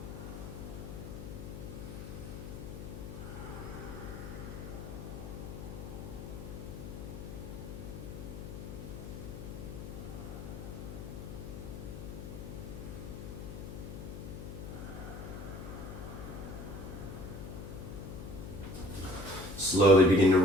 Slowly begin to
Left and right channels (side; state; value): left; noise; hum, 8 dB below the sound